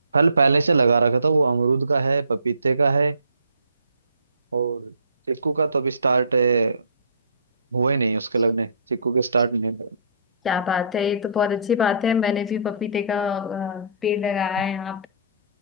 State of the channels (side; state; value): both; inverted; correlation -0.52